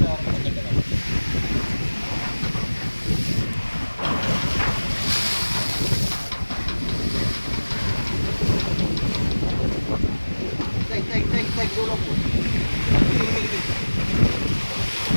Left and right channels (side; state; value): both; inverted; correlation -1.00